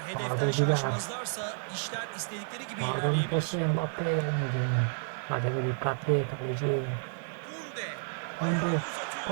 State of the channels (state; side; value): silent; left; 57 dB below the other